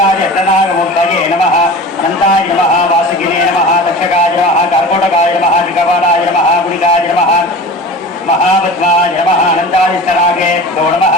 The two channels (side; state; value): both; normal; correlation 0.35